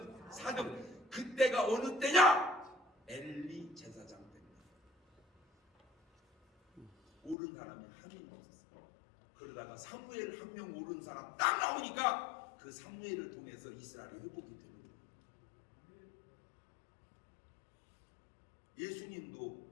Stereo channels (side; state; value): right; drops out; at 7.4 s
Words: 4등. 그때가 어느 때냐? 엘리 제사장 때입니다. 오른 사람이 한 명도 없었어요. 그러다가 사무엘 한 명 오른 사람 딱 나오니까 그 사무엘을 통해서 이스라엘이 회복이 되는 거예요. 예수님도